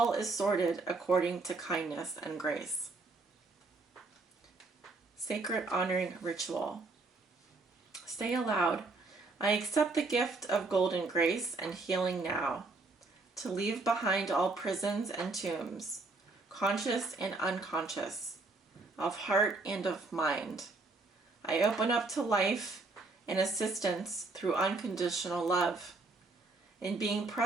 is sorted according to kindness and grace. Sacred honoring ritual. Say aloud, I accept the gift of golden grace and healing now, to leave behind all prisons and tombs, conscious and unconscious, of heart and of mind. I open up to life and assistance through unconditional love, in being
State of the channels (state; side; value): quieter; left; 3.4 dB